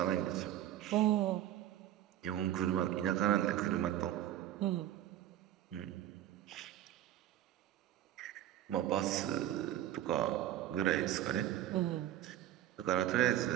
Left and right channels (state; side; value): quieter; left; 12.3 dB